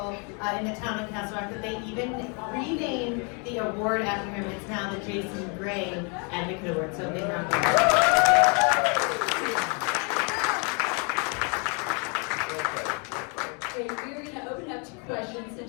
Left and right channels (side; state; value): right; quieter; 35.5 dB